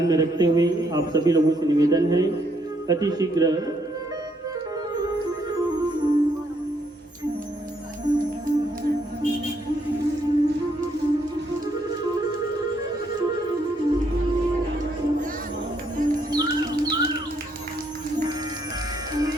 में रखते हुए आप सभी लोगों से निवेदन है अति शीघ्र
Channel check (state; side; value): normal; both; correlation 0.72